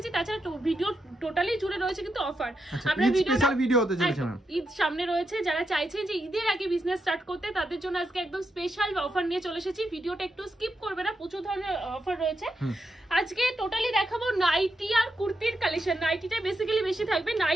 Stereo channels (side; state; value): both; normal; correlation 0.84